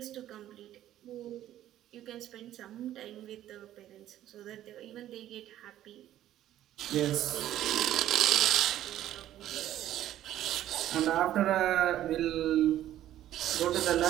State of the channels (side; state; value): left; quieter; 12.6 dB